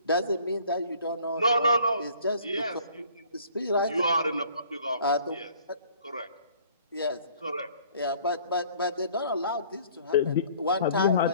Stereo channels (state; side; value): inverted; both; correlation -0.54